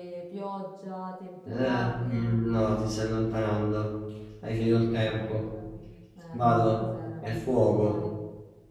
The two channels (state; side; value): identical; both; correlation 1.00